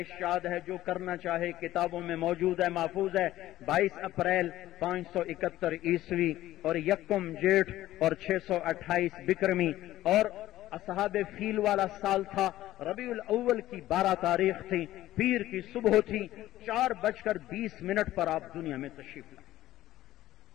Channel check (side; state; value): right; quieter; 14.8 dB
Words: یاد ہے، جو کرنا چاہے کتابوں میں موجود ہے، محفوظ ہے. 22 اپریل 571 عیسوی اور 1 جیٹھ اور 628 بکرمی، اور اصحاب فیل والا سال تھا. ربیع الاول کی 12 تاریخ تھی، پیر کی صبح تھی. 4:20 پر آپ دنیا میں تشریف لائے.